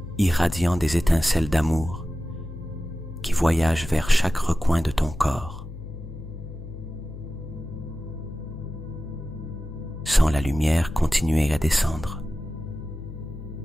irradiant des étincelles d'amour qui voyagent vers chaque recoin de ton corps. Sens la lumière continuer à descendre,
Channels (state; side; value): noise; left; hum, 12 dB below the sound